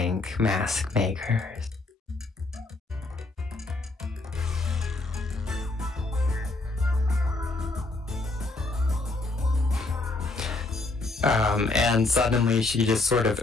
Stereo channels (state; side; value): quieter; right; 3.2 dB